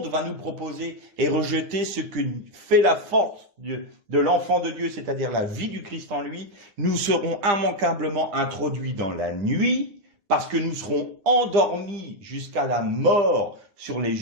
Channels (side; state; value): left; late; 9.9 ms